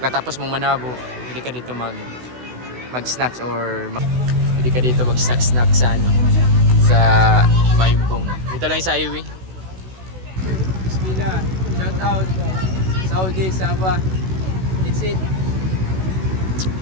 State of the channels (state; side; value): late; left; 16 ms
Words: Katapos mong manabo, pwede ka dito mag-snacks or pwede ka dito mag-snack sa ano, sa Mayumbong. Dito lang sa highway. Bismillah. Shout out. Saudi, Sabah. It's it.